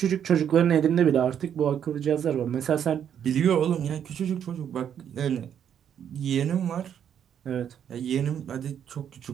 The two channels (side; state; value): left; quieter; 8.9 dB